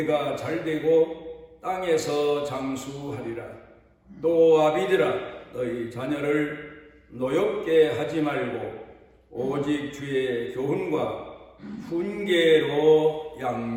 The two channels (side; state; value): both; identical; correlation 1.00